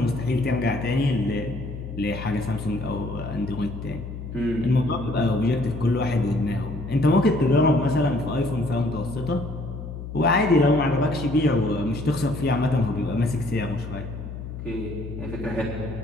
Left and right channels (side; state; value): left; noise; hum, 9 dB below the sound